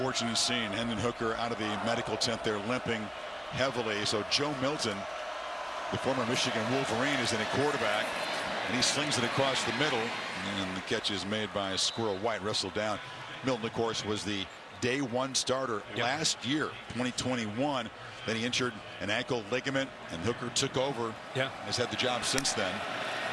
scene. Hendon Hooker out of the medical tent there limping heavily. So Joe Milton, the former Michigan Wolverine, is in a quarterback. And he slings it across the middle. And the catch is made by Squirrel White, wrestled down. Milton, of course, was the day one starter last year, 2021. Then he injured an ankle ligament, and Hooker took over. Yeah. Has had the job since then.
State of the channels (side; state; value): both; identical; correlation 1.00